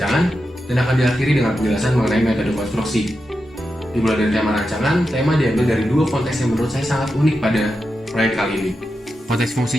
dan akan diakhiri dengan penjelasan mengenai metode konstruksi. Dimulai dari tema rancangan, tema diambil dari dua konteks yang menurut saya sangat unik pada proyek kali ini. Konteks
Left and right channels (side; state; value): both; normal; correlation 0.89